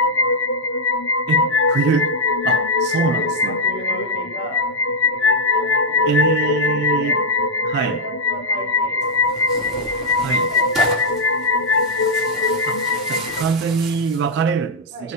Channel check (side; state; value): both; normal; correlation -0.02